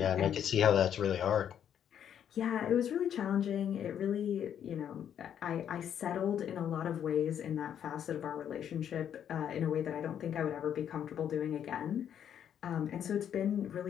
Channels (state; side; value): quieter; right; 9.3 dB